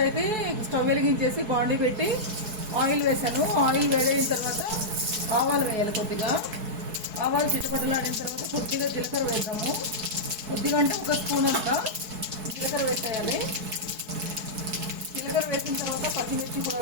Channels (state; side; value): late; left; 4.6 ms